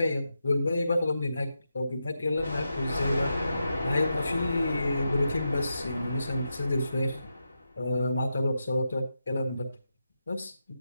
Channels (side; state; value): both; inverted; correlation -0.88